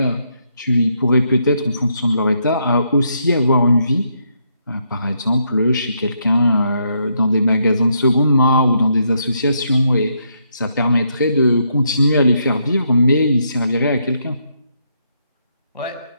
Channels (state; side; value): inverted; both; correlation -0.77